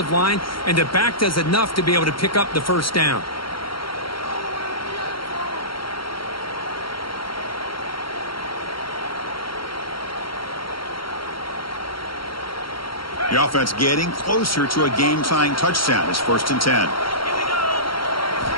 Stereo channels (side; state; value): right; late; 0.73 ms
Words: line, and the back does enough to be able to pick up the 1st down. The offense getting closer to a game-tying touchdown. It's 1st and 10.